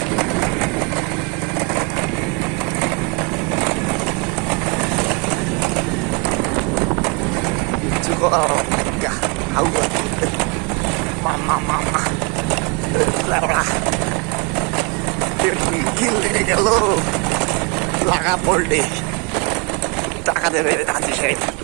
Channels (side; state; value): left; quieter; 32.0 dB